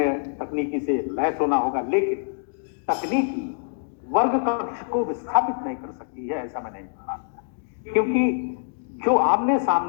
तकनीकी से लैस होना होगा, लेकिन तकनीकी वर्ग कक्ष को विस्थापित नहीं कर सकती है, ऐसा मैं नहीं मानता। क्योंकि जो आमने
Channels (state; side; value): silent; right; digital silence